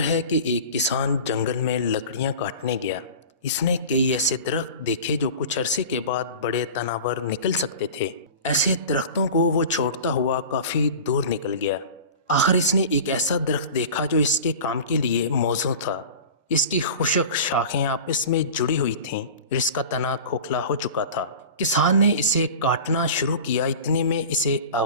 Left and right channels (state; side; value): inverted; both; correlation -0.35